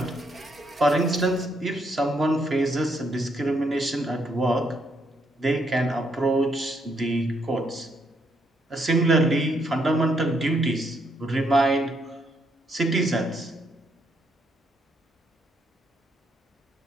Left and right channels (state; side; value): normal; both; correlation 0.74